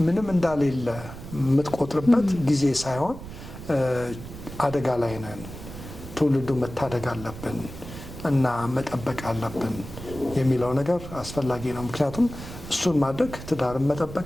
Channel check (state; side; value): noise; right; rumble, 12 dB below the sound